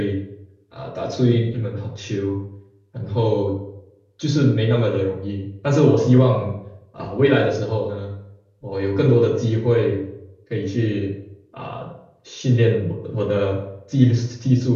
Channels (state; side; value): identical; both; correlation 1.00